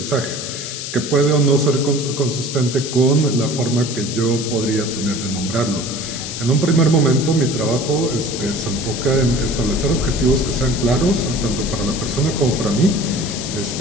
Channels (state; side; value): noise; left; hiss, 7 dB below the sound